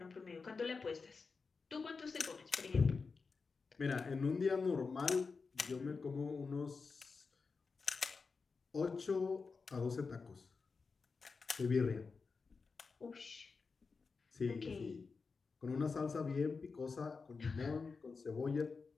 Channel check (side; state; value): right; quieter; 4.7 dB